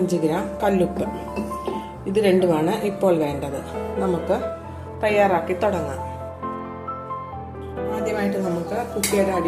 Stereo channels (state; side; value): identical; both; correlation 1.00